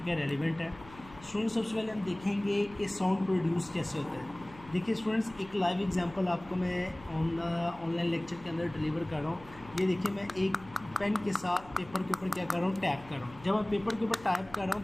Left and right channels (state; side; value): noise; left; hum, 21 dB below the sound